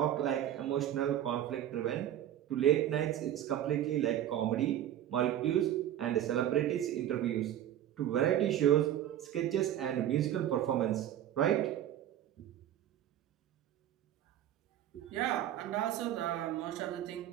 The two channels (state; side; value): quieter; left; 11.4 dB